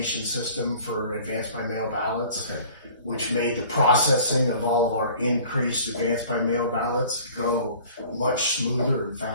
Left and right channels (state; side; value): inverted; both; correlation -0.47